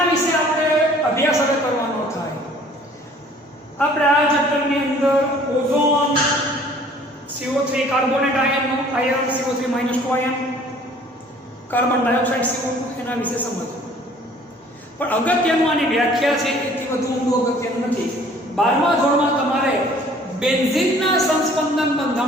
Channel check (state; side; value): normal; both; correlation 0.54